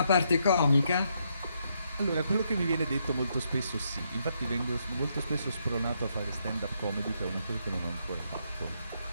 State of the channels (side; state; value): both; inverted; correlation -0.77